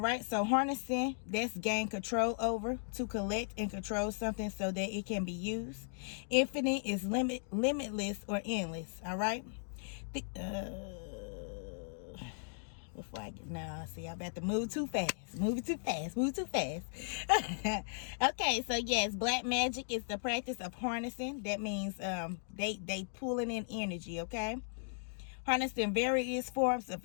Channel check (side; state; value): right; silent; digital silence